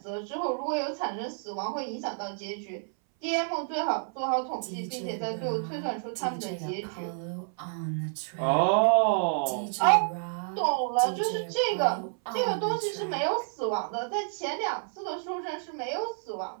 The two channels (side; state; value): left; silent; 58 dB below the other